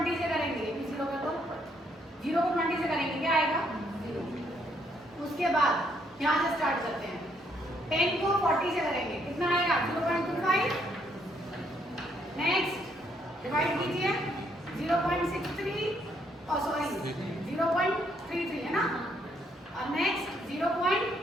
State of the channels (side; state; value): both; normal; correlation 0.71